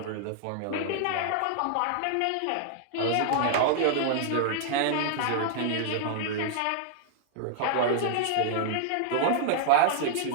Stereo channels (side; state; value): both; different; correlation -0.01